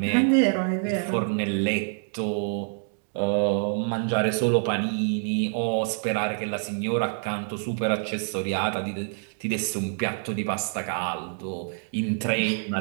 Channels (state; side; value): silent; left; 61 dB below the other